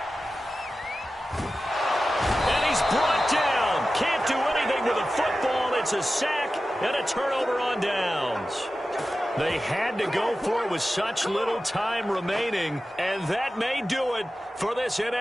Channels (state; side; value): normal; both; correlation 0.94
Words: And he's brought down. Can't do anything with a football. It's a sack and a turnover on downs. They had to go for it with such little time remaining, and that may do it for this